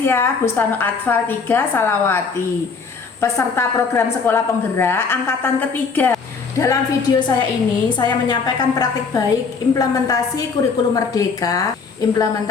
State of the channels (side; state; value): right; quieter; 5.1 dB